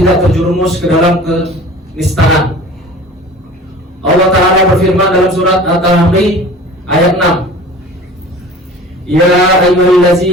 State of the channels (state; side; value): normal; both; correlation 0.42